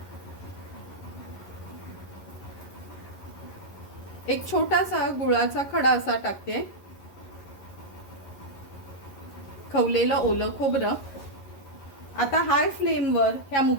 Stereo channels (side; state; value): right; late; 11 ms